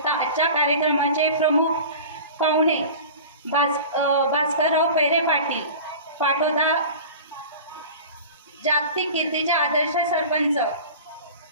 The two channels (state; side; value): inverted; both; correlation -0.37